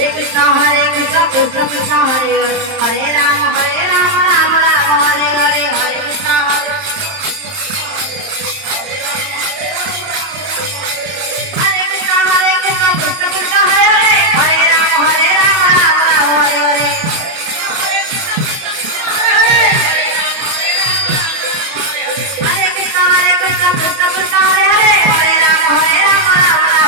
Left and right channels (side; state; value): left; late; 31 ms